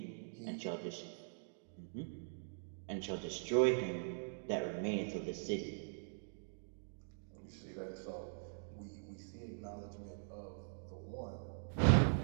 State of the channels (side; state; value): left; silent; digital silence